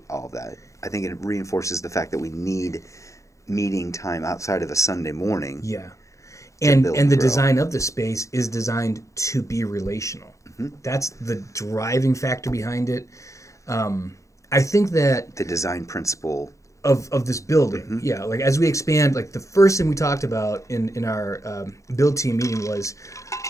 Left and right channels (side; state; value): right; late; 0.15 ms